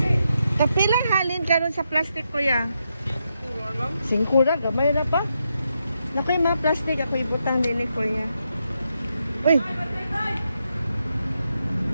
Kapilang halin karon sa plastic ko ya. Singkura gamay na pa. Nakoy mga plastic ako ibutang din ni kuya. Uy.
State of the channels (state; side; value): inverted; both; correlation -0.83